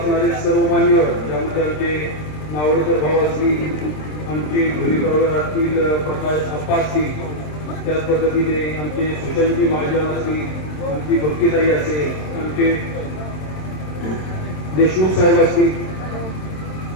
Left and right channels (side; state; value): right; late; 27 ms